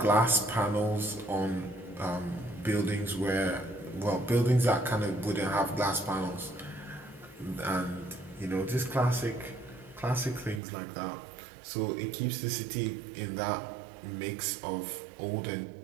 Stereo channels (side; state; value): left; drops out; at 10.6 s